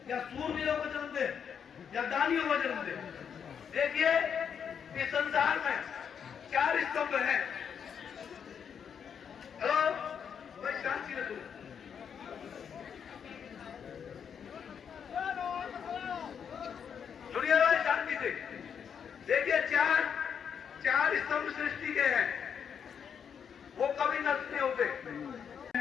या सूरवीरों को जन्म दे, या दानियों को जन्म दे। देखिए इस संसार में 4 स्तंभ है। हेलो भाई शांति रखो। सुनिए भाई शांति से। देखिए चार स्तंभ सृष्टि के हैं, वो कभी नष्ट नहीं होते।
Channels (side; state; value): right; quieter; 7.5 dB